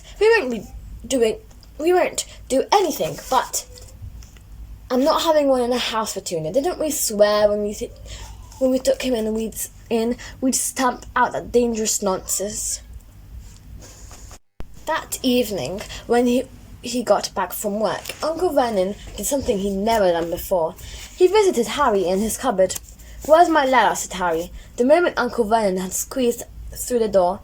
We won't do anything, but I'm not having one in the house, Petunia. Didn't we swear when we took him and we'd stamp out that dangerous nonsense?" That evening, when he got back from work, Uncle Vernon did something he'd never done before. He visited Harry in his cupboard. "Where's my letter?" said Harry, the moment Uncle Vernon had squeezed through the door.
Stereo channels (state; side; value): identical; both; correlation 1.00